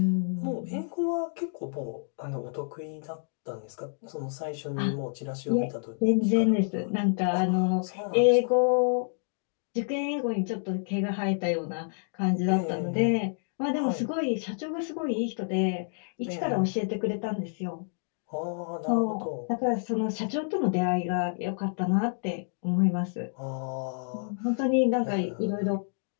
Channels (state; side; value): silent; right; digital silence